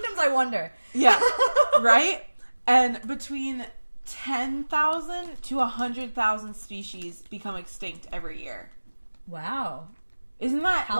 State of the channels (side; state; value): both; inverted; correlation -1.00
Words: I wonder. Yeah. Right? And between 10,000 to 100,000 species become extinct every year. Wow. Isn't that